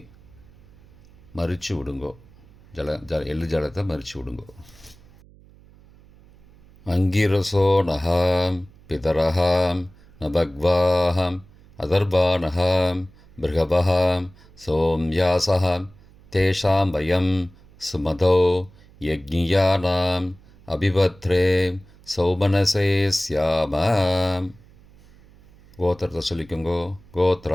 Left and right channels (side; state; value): right; noise; hum, 26 dB below the sound